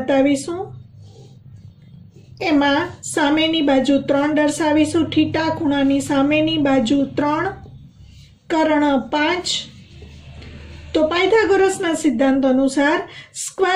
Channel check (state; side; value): identical; both; correlation 1.00